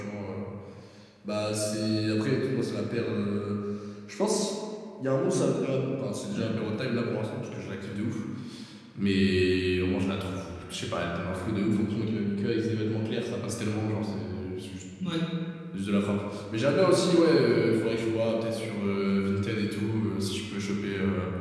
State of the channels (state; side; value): identical; both; correlation 1.00